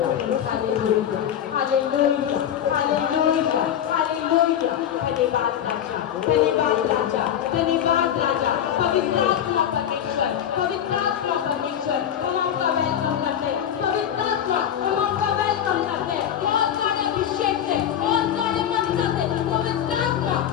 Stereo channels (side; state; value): right; quieter; 9.8 dB